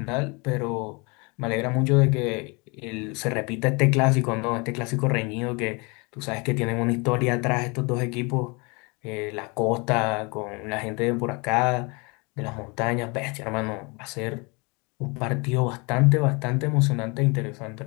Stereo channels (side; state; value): right; quieter; 29.3 dB